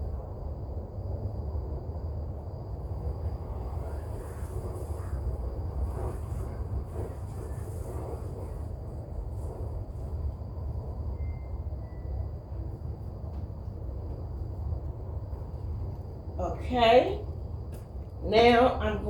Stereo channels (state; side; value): identical; both; correlation 1.00